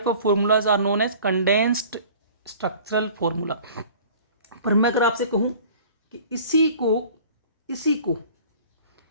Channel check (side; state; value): both; inverted; correlation -0.47